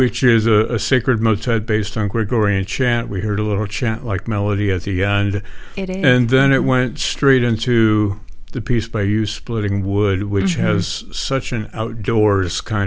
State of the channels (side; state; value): both; identical; correlation 1.00